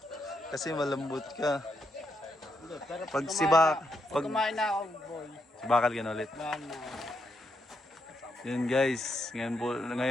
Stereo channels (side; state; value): both; normal; correlation 0.80